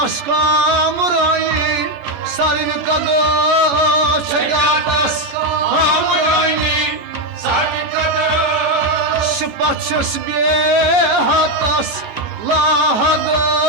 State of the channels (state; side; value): late; left; 14 ms